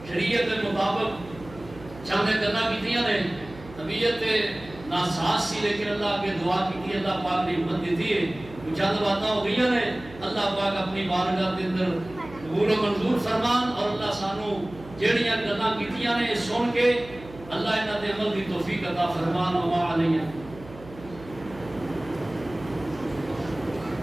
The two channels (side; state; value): right; noise; hum, 18 dB below the sound